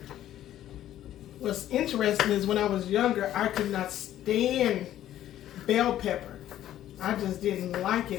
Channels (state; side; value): quieter; right; 12.4 dB